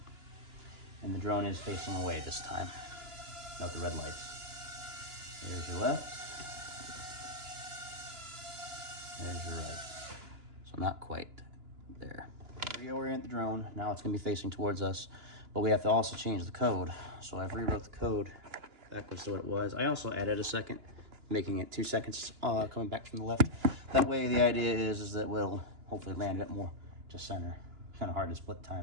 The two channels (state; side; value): late; left; 2.9 ms